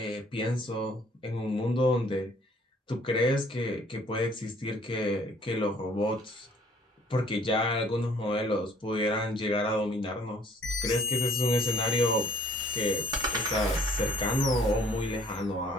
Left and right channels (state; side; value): normal; both; correlation 0.58